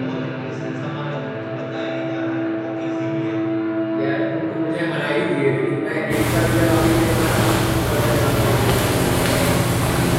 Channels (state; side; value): identical; both; correlation 1.00